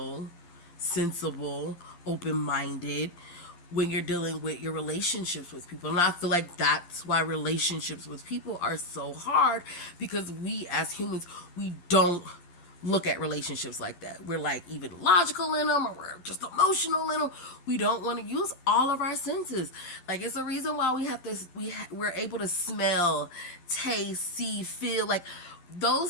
sensible, open minded when you're dealing with your relationships with people. And I feel like that's why relationships with people are so hard, because we as humans, we don't look at relationships like that. We're like even logical in them, or we're just emotional in them. We don't want to use all of our senses. Like, it's a reason why we have this. We're able to smell, taste, see, feel. Like,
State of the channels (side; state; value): right; late; 12 ms